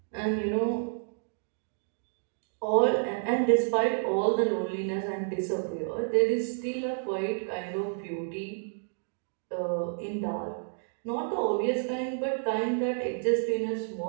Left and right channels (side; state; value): left; silent; digital silence